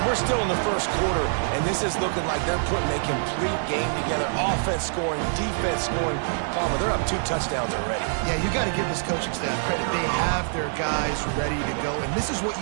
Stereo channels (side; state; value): left; silent; digital silence